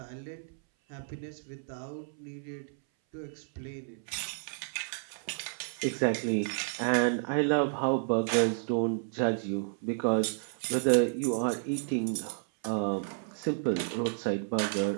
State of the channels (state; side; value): silent; left; 57 dB below the other